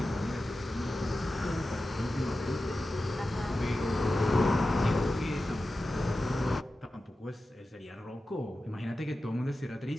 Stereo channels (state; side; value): normal; both; correlation 0.93